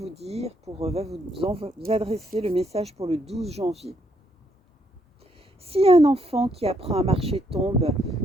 adresser le message pour le 12 janvier. Si un enfant qui apprend à marcher tombe,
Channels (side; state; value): both; normal; correlation 0.73